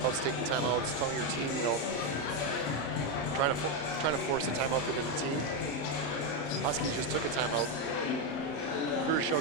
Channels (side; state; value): right; late; 35 ms